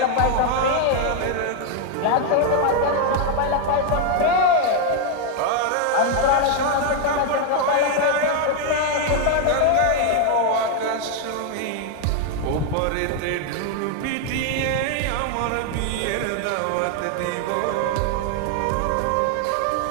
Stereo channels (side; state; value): both; different; correlation 0.00